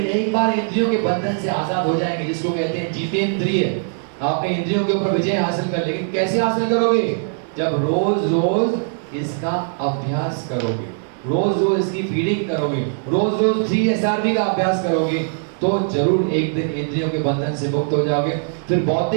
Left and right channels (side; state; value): left; silent; 65 dB below the other